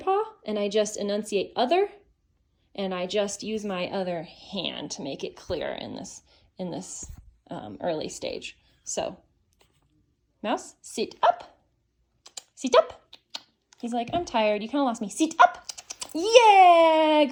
And I just enunciate other. And I just use my other hand to make it clear in this early stage. So, mouse, sit up. Sit up. He's like, I'm tired. You kind of lost me. Sit up. Yeah,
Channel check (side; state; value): both; identical; correlation 1.00